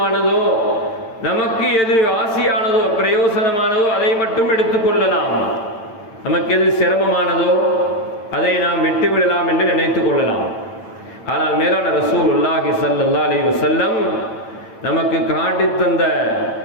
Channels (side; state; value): right; late; 8.9 ms